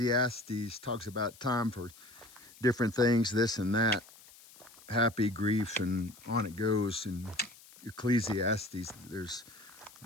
talks about time for different things, this and that, happy, grief, and on it goes. In Ecclesiastes, there's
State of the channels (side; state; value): left; noise; hiss, 22 dB below the sound